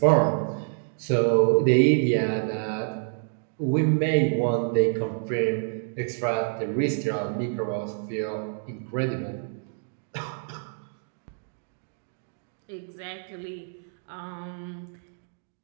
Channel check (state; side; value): silent; left; digital silence